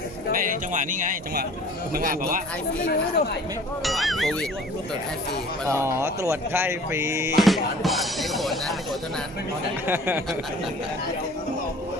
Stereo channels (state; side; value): normal; both; correlation 0.48